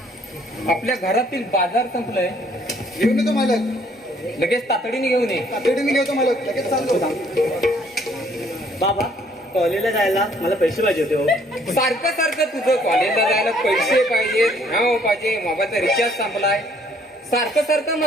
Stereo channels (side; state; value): both; normal; correlation 0.63